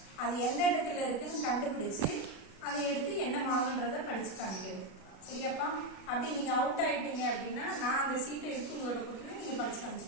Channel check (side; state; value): right; late; 37 ms